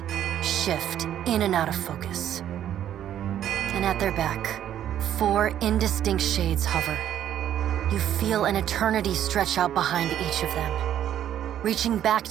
shift in and out of focus. And at their back, 4 indistinct shades hover. You feel an eternity stretch out behind each of them, reaching back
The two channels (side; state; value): left; quieter; 10.8 dB